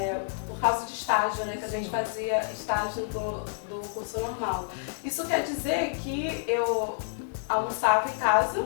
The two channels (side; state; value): right; silent; 59 dB below the other